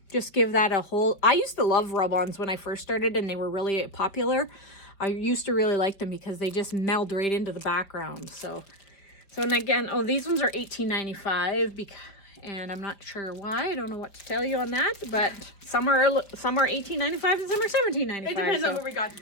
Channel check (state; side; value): late; right; 4.9 ms